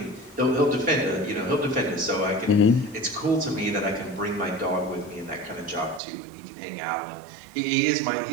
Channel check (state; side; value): drops out; left; at 6.0 s